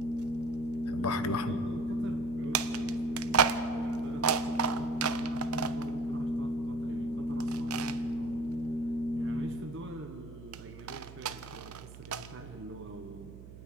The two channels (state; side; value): noise; right; hum, 15 dB below the sound